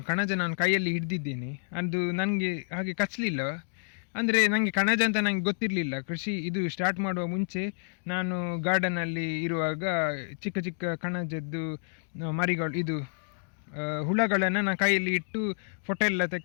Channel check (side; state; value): right; silent; digital silence